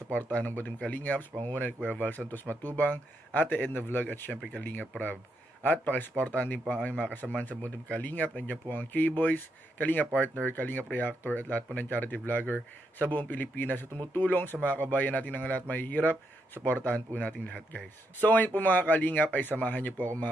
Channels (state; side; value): normal; both; correlation 0.80